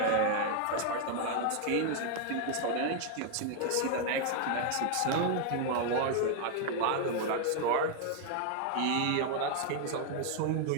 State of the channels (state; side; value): different; both; correlation 0.00